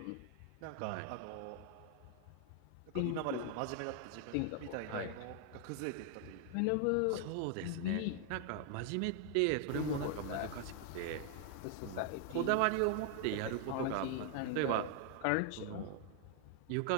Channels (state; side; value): different; both; correlation 0.00